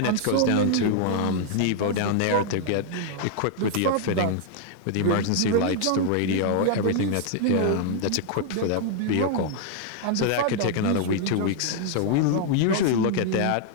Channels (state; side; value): different; both; correlation -0.01